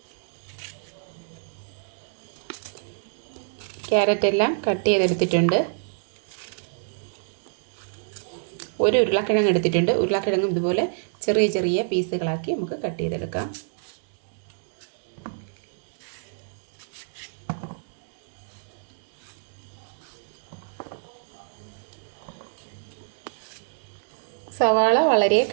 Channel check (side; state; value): left; silent; digital silence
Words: ക്യാരറ്റ് എല്ലാം കട്ട് ചെയ്തെടുത്തിട്ടുണ്ട്. ഒരു ഉരുളക്കിഴങ്ങ് എടുത്തിട്ടുണ്ട്. ഉരുളക്കിഴങ്ങും ഇതുപോലെ ചെറിയ ചെറിയ പീസുകളാക്കി നമുക്ക് കട്ട് ചെയ്തെടുക്കാം. സവാള വളരെ